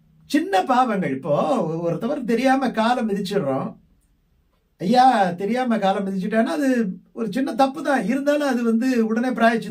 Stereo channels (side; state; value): both; identical; correlation 1.00